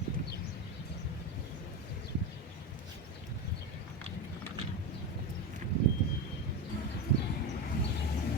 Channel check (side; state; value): both; normal; correlation 0.18